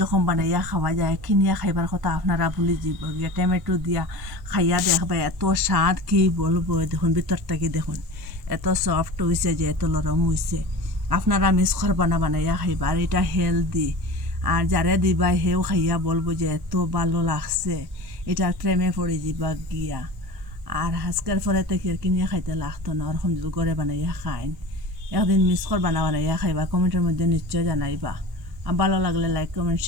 বানাইয়া খাওয়া যায়, কিনিয়া খাইবার কথা আপনারা ভুলে যাব গিয়া। টমেটো দিয়া খাইয়া দেখবা, এত স্বাদ কি বলবো। দেখুন ভিতরটাকে দেখুন, এত সফট হয়েছে যে, এত নরম হয়েছে। আপনারা মিস করবা না, বানাইয়া খাইবা। আর এটা হেলদি, আর যারে দিবা হেও খাইয়া বলবো যে এত ভালো লাগছে, এটা প্রেমে পড়ে যাবা গিয়া। আর আজকের পরে থেকে কিনিয়া খাইতে লাগতো না, ওরকম যদি ঘরে বানাইয়া খাইন। একদিন মিস করবা না, বানাইয়া খাইবা। কমেন্টের মধ্যে নিশ্চয় জানাইবা। আর ভালো লাগলে লাইক কমেন্ট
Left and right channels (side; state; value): left; late; 1.1 ms